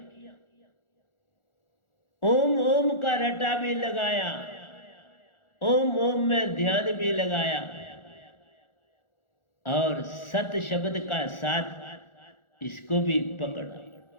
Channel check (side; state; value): right; late; 1.4 ms